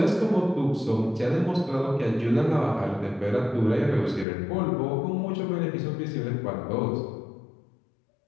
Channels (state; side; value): drops out; right; at 4.2 s